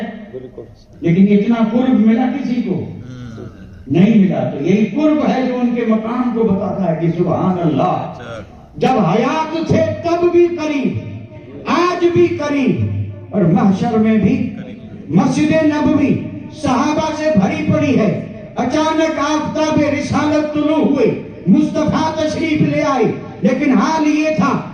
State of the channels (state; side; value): identical; both; correlation 1.00